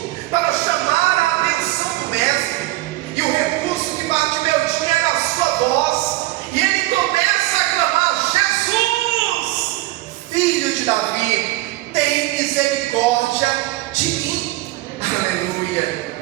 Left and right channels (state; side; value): quieter; left; 18.3 dB